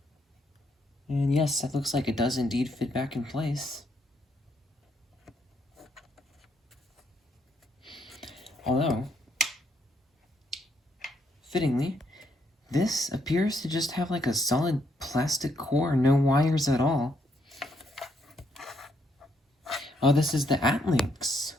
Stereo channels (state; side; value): normal; both; correlation 0.74